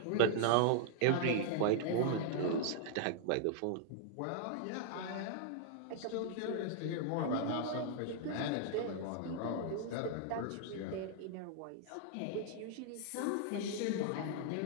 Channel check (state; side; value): different; both; correlation -0.01